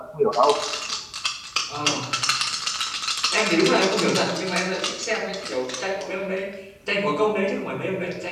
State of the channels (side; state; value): both; identical; correlation 1.00